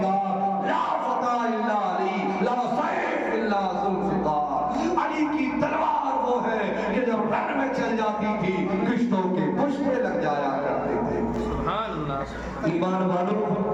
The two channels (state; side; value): identical; both; correlation 1.00